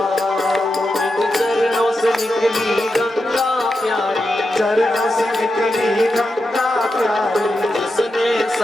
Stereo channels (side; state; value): both; normal; correlation 0.88